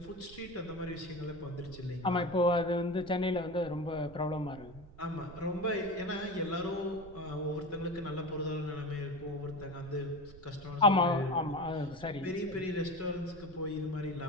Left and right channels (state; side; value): noise; right; rumble, 18 dB below the sound